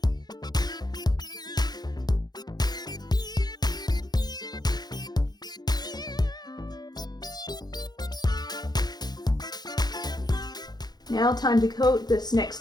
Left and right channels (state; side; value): late; right; 0.20 ms